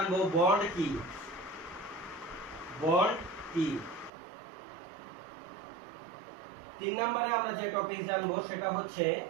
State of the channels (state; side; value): drops out; left; at 4.1 s